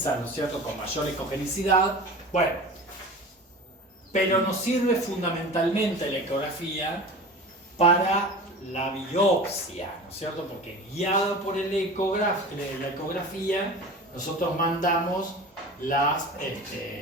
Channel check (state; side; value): normal; both; correlation 0.35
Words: ¿no es cierto?, con mayor ecogenicidad, bueno, pero nos sirve fundamentalmente la ecografía para la biopsia, ¿no es cierto?, porque guiado por la ecografía, nosotros mandamos el